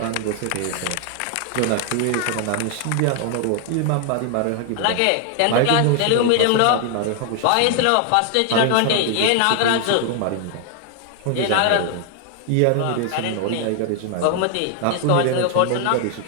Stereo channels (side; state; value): both; different; correlation 0.00